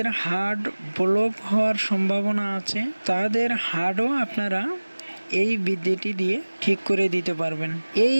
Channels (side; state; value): both; inverted; correlation -1.00